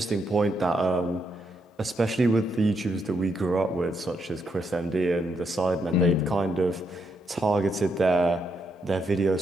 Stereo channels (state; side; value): normal; both; correlation 0.78